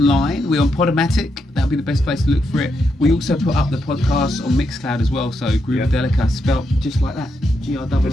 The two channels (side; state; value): both; normal; correlation 0.82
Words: We're on Podomatic. That'll be the best place to look for it. We also put up the podcast on Mixcloud as well. So Groovadelica, spelt just like that. G-R-O-O-V-A-D-E-L-I-C-A.